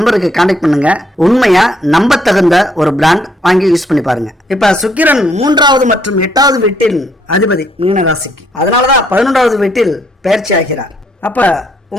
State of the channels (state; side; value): normal; both; correlation 0.70